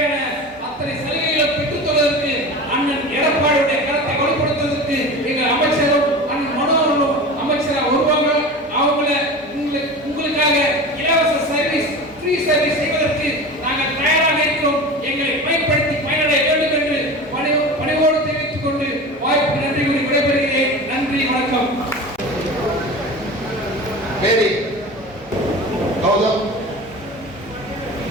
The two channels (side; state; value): both; normal; correlation 0.32